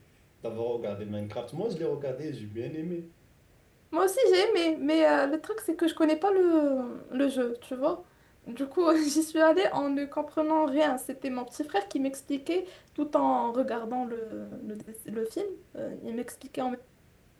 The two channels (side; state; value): both; identical; correlation 1.00